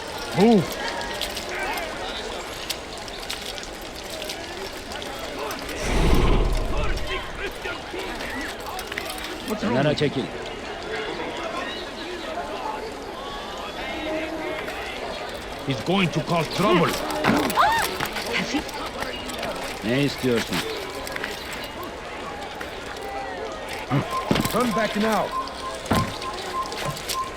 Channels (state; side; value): identical; both; correlation 1.00